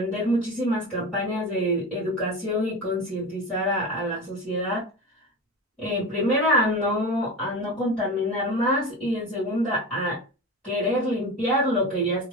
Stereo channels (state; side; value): normal; both; correlation 0.27